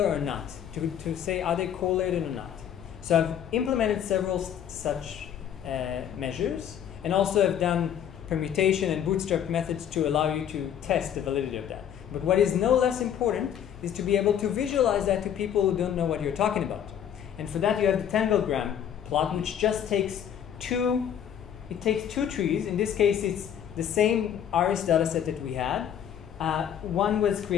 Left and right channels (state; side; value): quieter; right; 9.3 dB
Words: or not, to say are they correlated or not. So I've implemented several such measures, and also have done permutation and bootstrap methods to allow you to test the validity of that. But what is no less important is to be able to visualize that to people who don't know what you're talking about. And for that you have the Dendrogram plot, which just takes two trees. In this case it's the same ARIS dataset that we had. One was